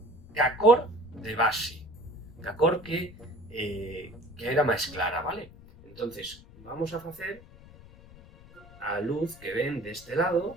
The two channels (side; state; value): left; noise; rumble, 21 dB below the sound